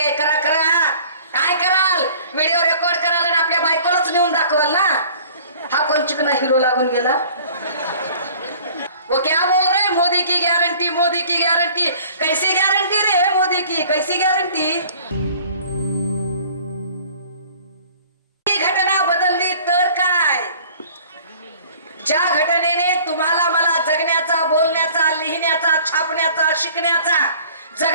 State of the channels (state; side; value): inverted; both; correlation -0.50